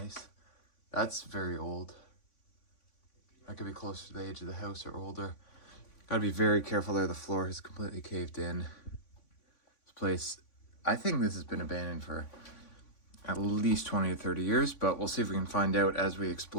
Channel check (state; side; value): late; right; 3.5 ms